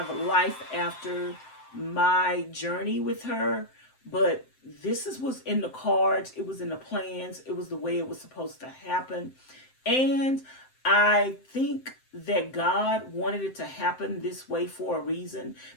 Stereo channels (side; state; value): right; late; 7.7 ms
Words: life after my journey with her. But this was in the cards. It was in the plans. It was the way it was supposed to happen. And I think that God wanted it to happen this way for a reason,